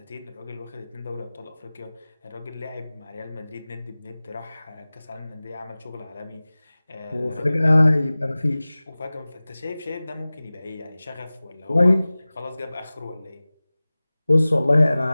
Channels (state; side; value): inverted; both; correlation -0.98